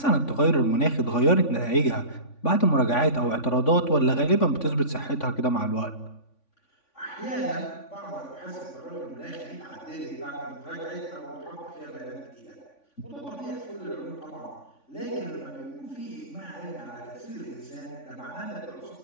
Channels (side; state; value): right; late; 3.5 ms